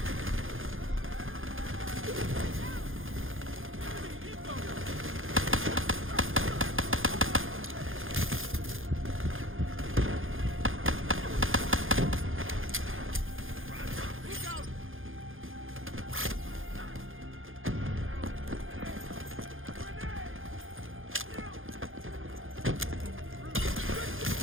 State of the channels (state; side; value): late; left; 0.59 ms